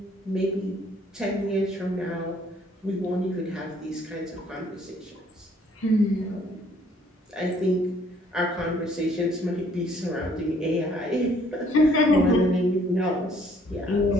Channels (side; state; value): both; normal; correlation 0.62